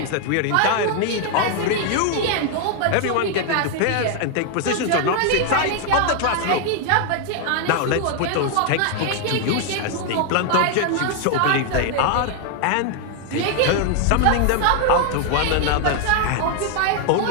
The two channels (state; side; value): different; both; correlation 0.00